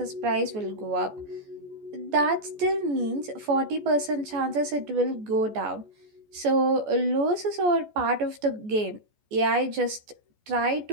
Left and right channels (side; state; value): left; late; 14 ms